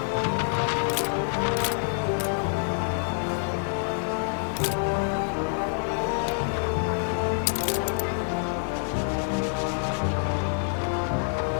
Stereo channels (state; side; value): silent; right; digital silence